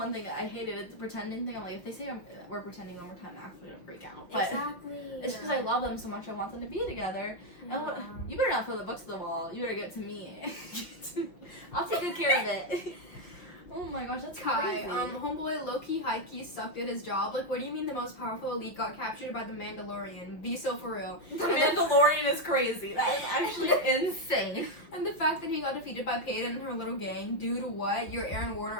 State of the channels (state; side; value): late; right; 6.0 ms